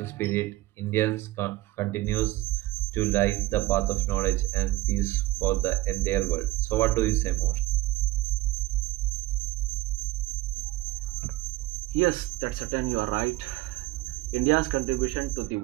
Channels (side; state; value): left; quieter; 18.4 dB